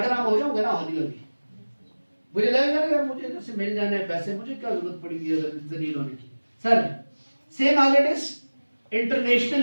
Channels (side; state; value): both; inverted; correlation -1.00